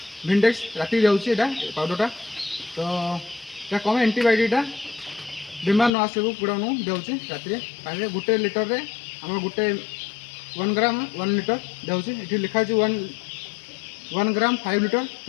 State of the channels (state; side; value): drops out; right; at 5.9 s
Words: भिंडेक्स राति जाऊँगी यहाँ पाउडरटा तो यहाँ कम एंटीबायोटिकटा बीमार न आसू कुड़ा देउची राति पानी गोटे लिटर रे आम गोटे 1 ग्राम 1 लिटर देउची ये लिखाई 1 ग्राम 5 लिटर